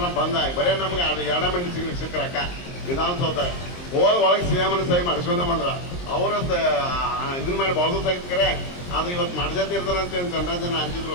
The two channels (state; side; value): late; right; 23 ms